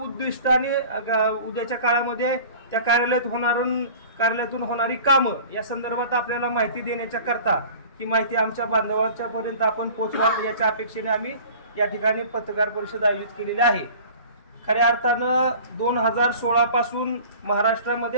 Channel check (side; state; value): both; inverted; correlation -0.44